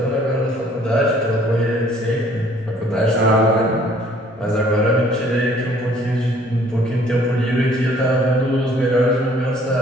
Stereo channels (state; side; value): normal; both; correlation 0.58